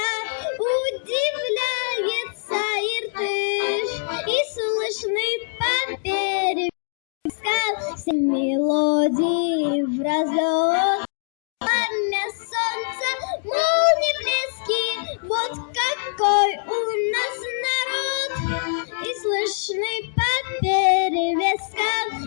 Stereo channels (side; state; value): right; silent; digital silence